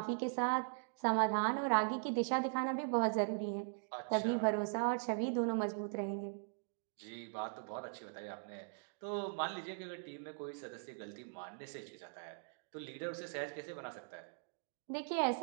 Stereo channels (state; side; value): silent; left; digital silence